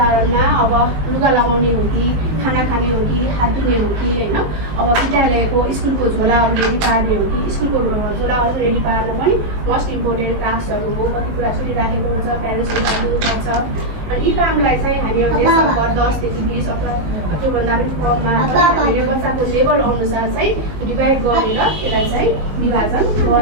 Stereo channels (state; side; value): late; left; 19 ms